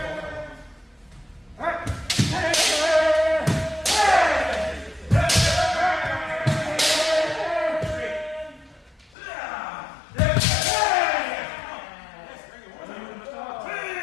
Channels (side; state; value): right; drops out; at 9.2 s